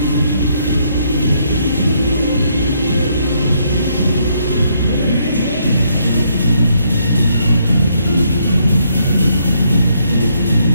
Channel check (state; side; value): inverted; both; correlation -0.73